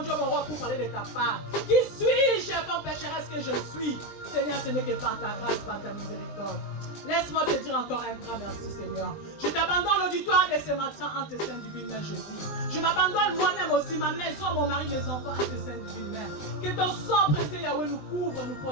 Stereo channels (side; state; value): right; late; 20 ms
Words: mon roi, pour parler de ta part? Qui suis-je, comme pécheresse que je suis? Seigneur, ce n'est que par ta grâce, par ta miséricorde. Laisse-moi te dire encore un grand merci, Seigneur. Je t'abandonne l'auditoire de ce matin en tes saintes divines mains, Jésus. Je m'abandonne moi-même aussi, ma maison, mon mari, mes enfants, en tes saintes divines mains. Que ton sang précieux, Yahweh, nous couvre, nous